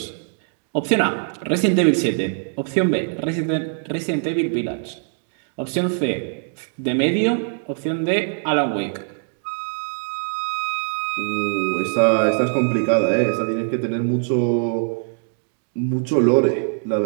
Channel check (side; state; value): left; silent; digital silence